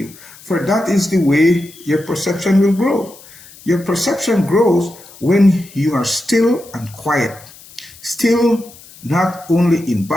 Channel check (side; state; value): left; noise; hiss, 21 dB below the sound